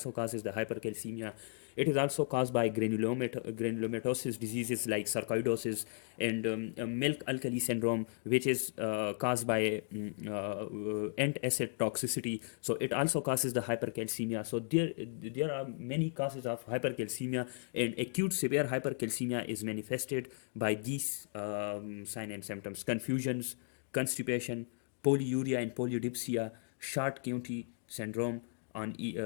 causes the hypercalcemia. It is also caused by granulomatosis diseases like sarcoidosis and milk alkali syndrome, which is caused by antacid toxicity. So it also causes the hypercalcemia. So there are many causes of hypercalcemia, and acute severe hypercalcemia is manifested by these signs and symptoms: confusions, constipation, polyuria and polydipsia, Short-County syndrome on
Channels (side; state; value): right; silent; digital silence